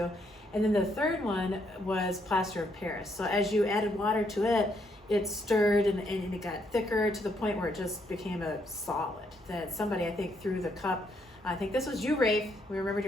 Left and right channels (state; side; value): normal; both; correlation 0.74